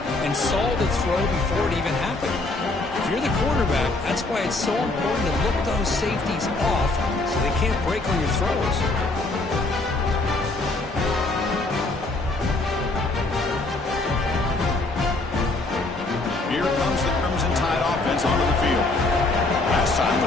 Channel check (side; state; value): right; quieter; 3.1 dB